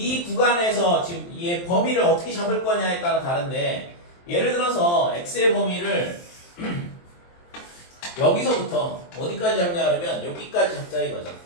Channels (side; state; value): right; late; 23 ms